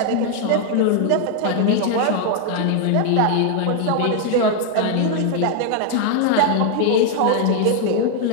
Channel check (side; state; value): both; different; correlation 0.00